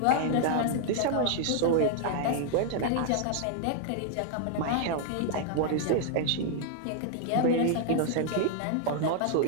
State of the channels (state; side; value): different; both; correlation 0.00